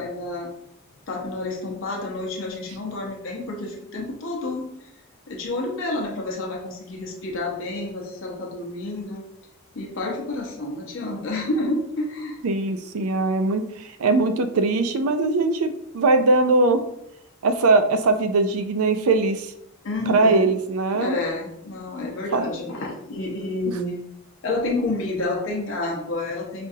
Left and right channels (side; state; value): both; normal; correlation -0.12